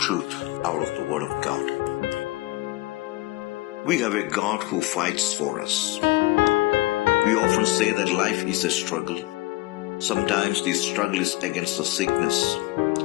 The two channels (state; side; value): quieter; right; 20.1 dB